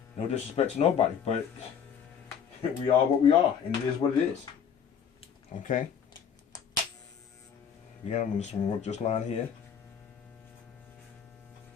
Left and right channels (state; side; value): quieter; right; 7.6 dB